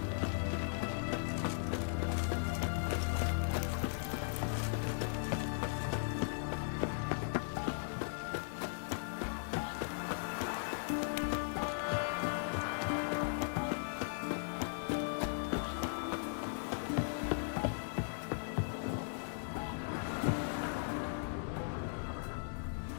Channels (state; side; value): silent; right; digital silence